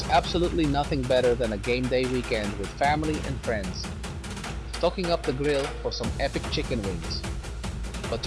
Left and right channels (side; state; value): both; identical; correlation 1.00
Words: absolutely nothing better than a game day weekend with family and friends, stocking up the grill for some epic chicken wings. But